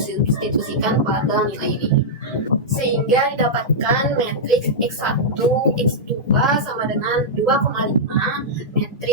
pada nilai ini, sehingga didapatkan matriks X1, X2 sama dengan 2,5,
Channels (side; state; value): both; normal; correlation -0.09